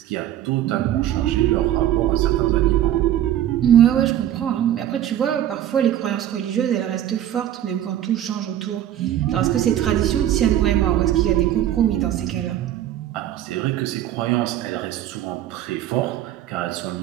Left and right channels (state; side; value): quieter; left; 11.7 dB